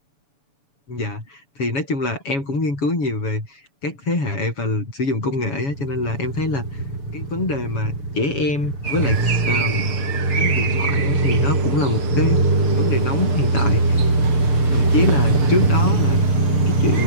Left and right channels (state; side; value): late; right; 6.9 ms